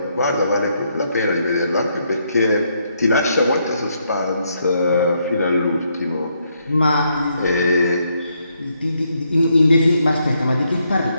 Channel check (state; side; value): inverted; both; correlation -0.76